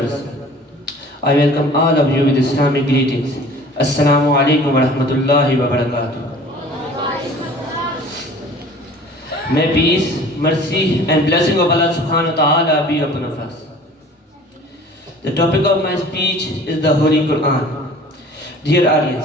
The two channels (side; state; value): both; normal; correlation 0.47